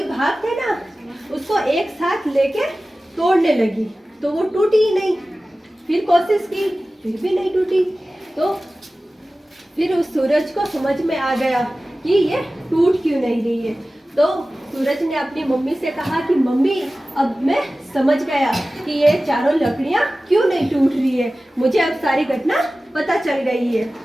भाग थे ना, उसको एक साथ लेके तोड़ने लगी। तो वो टूटी ही नहीं। फिर कोशिश की, फिर भी नहीं टूटी। तो फिर उस सूरज को समझ में आ गया कि ये टूट क्यों नहीं रही है। तो सूरज ने अपनी मम्मी से कहा कि मम्मी, अब मैं समझ गया कि ये चारों लकड़ियां क्यों नहीं टूट रही है। मुझे अब सारी घटना पता चल गई है।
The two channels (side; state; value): both; normal; correlation 0.96